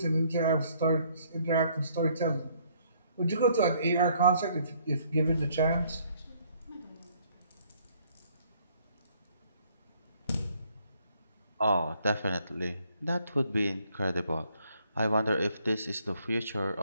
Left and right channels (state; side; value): inverted; both; correlation -0.65